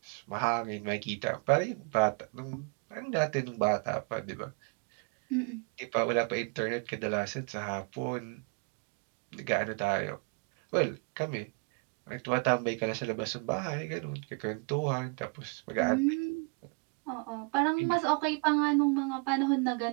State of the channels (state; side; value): quieter; left; 37.2 dB